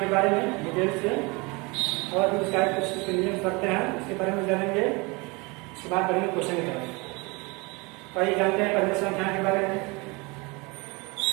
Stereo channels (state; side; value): quieter; left; 27.0 dB